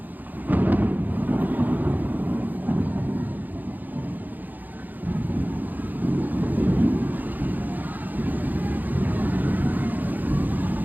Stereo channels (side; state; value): left; late; 0.085 ms